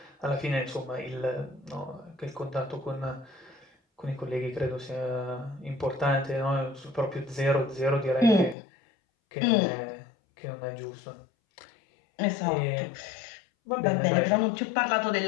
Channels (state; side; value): drops out; right; at 8.6 s